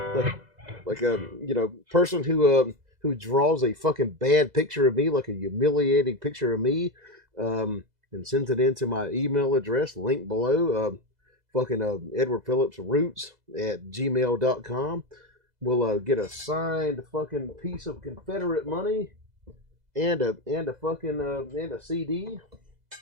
Person who draws a fucking bad picture of me, like a humiliating picture of me, and sends it into my email address, link below, Edward Phillips Roots at gmail.com. Will get a signed fucking piece of Confederate money and a CD.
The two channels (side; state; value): left; late; 2.0 ms